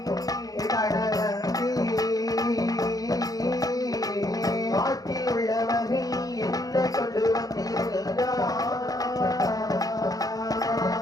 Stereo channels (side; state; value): right; late; 0.18 ms